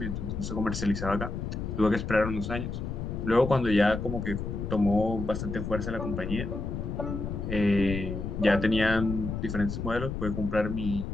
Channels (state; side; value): noise; left; rumble, 5 dB below the sound